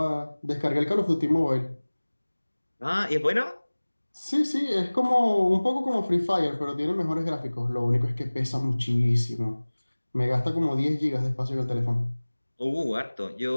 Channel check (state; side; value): inverted; both; correlation -1.00